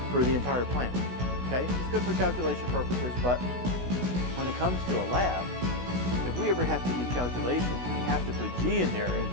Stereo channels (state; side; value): late; left; 16 ms